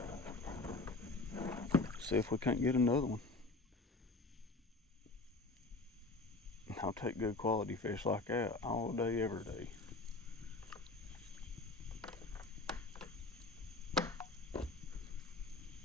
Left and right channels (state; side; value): quieter; right; 3.2 dB